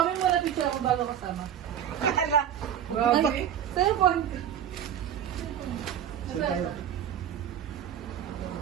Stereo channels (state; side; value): quieter; left; 9.6 dB